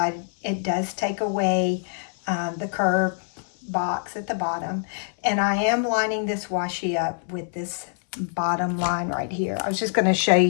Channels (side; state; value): right; silent; 62 dB below the other